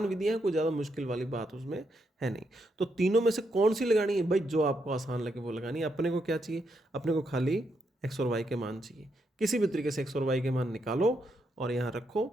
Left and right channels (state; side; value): normal; both; correlation 0.80